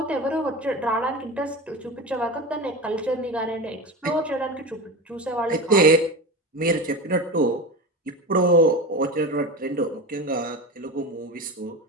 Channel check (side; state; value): both; normal; correlation 0.26